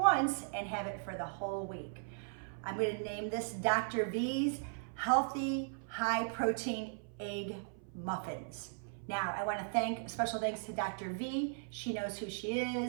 and have it for the whole week. I'm going to name this Dr. V's Healthy High Protein Egg Muffins. Now, I want to thank, special thanks to Dr. V. She knows who she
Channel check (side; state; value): left; silent; 53 dB below the other